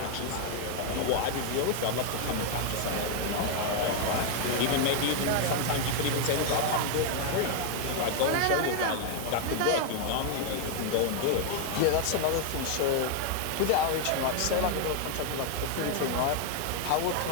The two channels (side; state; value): both; different; correlation 0.00